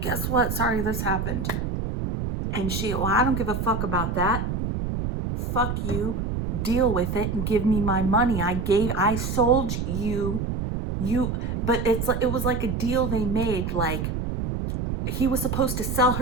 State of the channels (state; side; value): noise; right; rumble, 2 dB below the sound